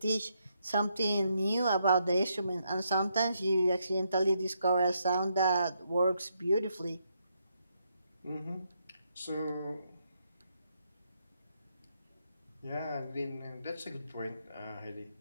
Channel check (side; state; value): both; inverted; correlation -0.78